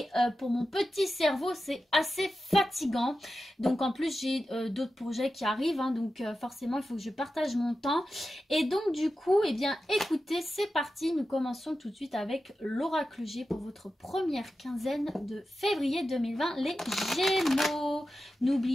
pour mon petit cerveau c'est assez fatigant. Donc en plus j'ai d'autres projets qui arrivent, donc forcément il faut que je partage mon temps. Et donc du coup, eh bien écoutez, c'est parti, nous commençons tout de suite avec l'oracle G pour votre première quinzaine de février 2020, les Gémeaux.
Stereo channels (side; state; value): both; normal; correlation 0.92